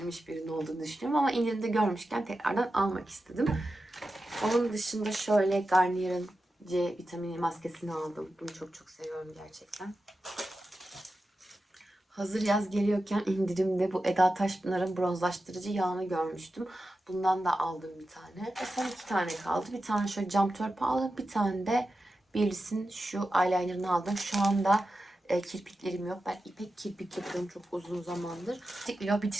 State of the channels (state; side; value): normal; both; correlation 0.91